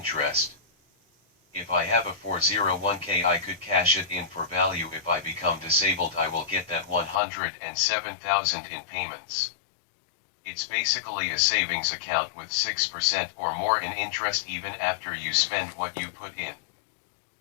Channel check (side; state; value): right; drops out; at 7.2 s